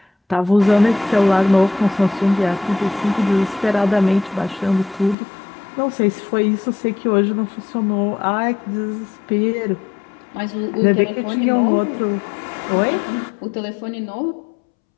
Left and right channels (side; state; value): right; drops out; at 5.2 s